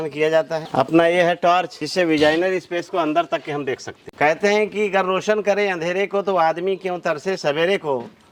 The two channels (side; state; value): both; identical; correlation 1.00